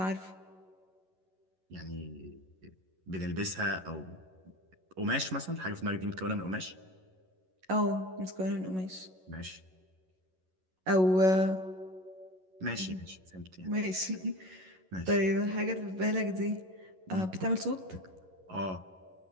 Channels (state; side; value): late; left; 11 ms